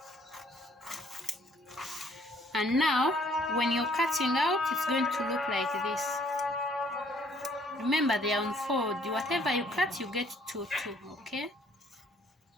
and now when you're cutting out, it's going to look like this. Remember, they are on fold. Whatever you cut, you get 2. Okay,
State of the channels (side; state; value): both; normal; correlation 0.62